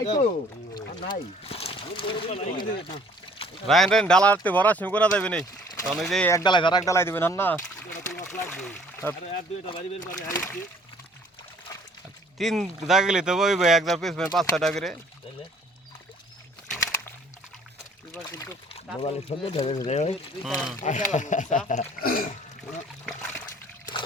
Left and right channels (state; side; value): normal; both; correlation 0.56